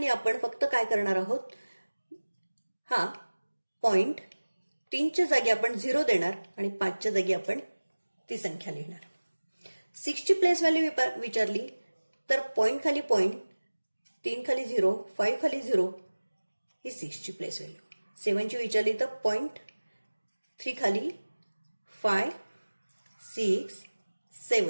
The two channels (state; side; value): inverted; both; correlation -1.00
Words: आपण फक्त काय करणार आहोत, हा 0.3च्या जागी आपण 0 देणार आणि 5च्या जागी आपण ती संख्या लिहिणार. 6ची प्लेस व्हॅल्यू विचारली तर पॉईंट खाली पॉईंट, 3 खाली 0, 5 खाली 0, ही 6ची प्लेस व्हॅल्यू. 7ची विचारली तर 0.3 खाली 5, 6,